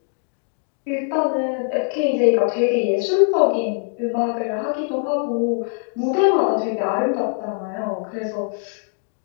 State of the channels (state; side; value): silent; right; 56 dB below the other